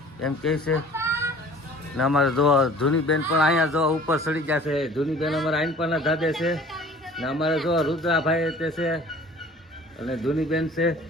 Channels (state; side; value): normal; both; correlation 0.48